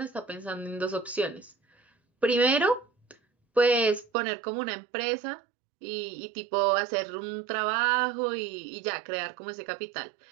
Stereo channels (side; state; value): left; drops out; at 4.0 s